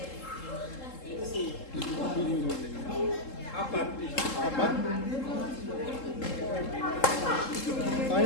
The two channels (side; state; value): right; late; 3.7 ms